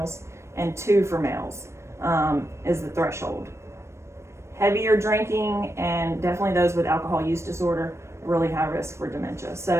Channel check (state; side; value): late; left; 0.13 ms